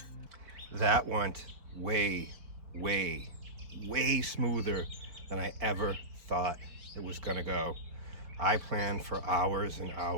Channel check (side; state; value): left; late; 4.7 ms